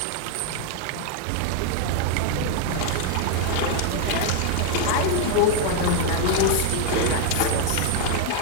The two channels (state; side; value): different; both; correlation 0.01